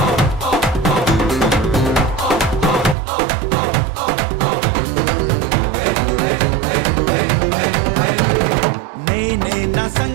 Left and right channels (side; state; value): left; drops out; at 3.0 s